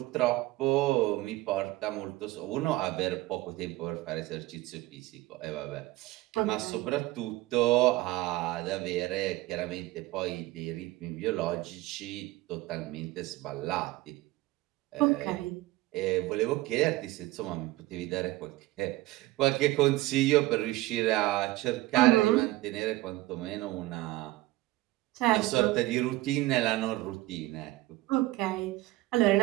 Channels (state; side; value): quieter; left; 18.4 dB